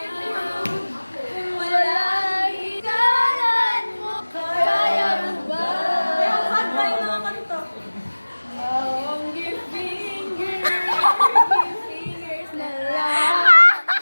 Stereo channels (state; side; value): inverted; both; correlation -1.00